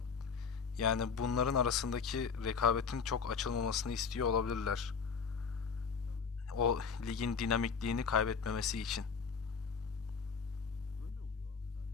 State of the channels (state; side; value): quieter; right; 5.8 dB